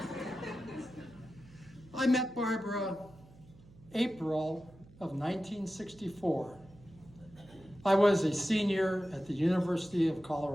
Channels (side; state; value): right; noise; hum, 23 dB below the sound